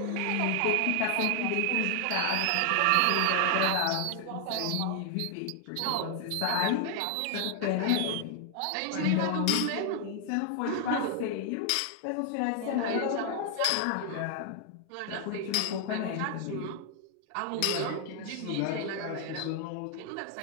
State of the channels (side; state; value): both; different; correlation 0.00